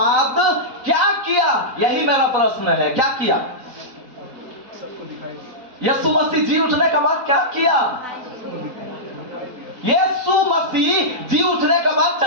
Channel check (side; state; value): left; late; 3.9 ms